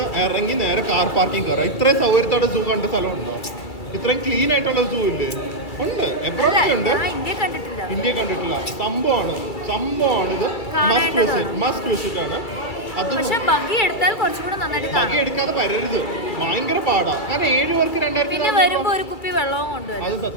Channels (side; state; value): right; late; 2.2 ms